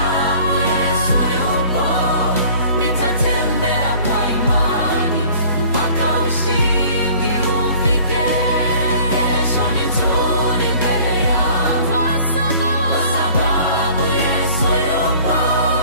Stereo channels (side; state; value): both; inverted; correlation -0.50